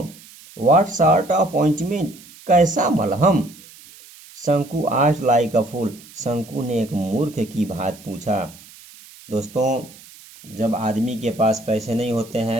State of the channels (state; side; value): noise; right; hiss, 21 dB below the sound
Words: व्हाट सॉर्ट ऑफ ऑइंटमेंट, कैसा मलहम। शंकु आस्क्ड लाइक अ फूल, शंकु ने एक मूर्ख की भांति पूछा। दोस्तों, जब आदमी के पास पैसे नहीं होते